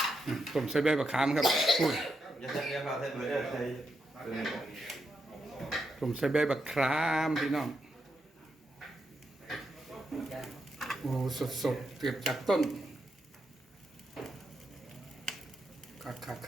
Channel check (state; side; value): normal; both; correlation 0.83